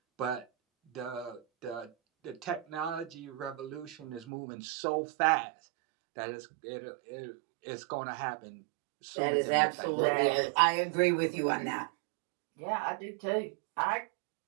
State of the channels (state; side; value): drops out; left; at 4.2 s